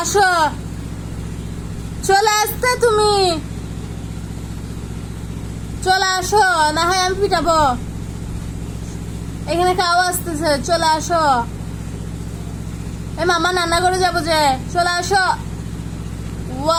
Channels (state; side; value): identical; both; correlation 1.00